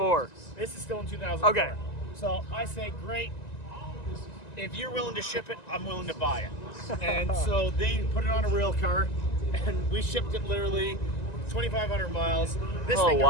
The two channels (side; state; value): right; late; 1.9 ms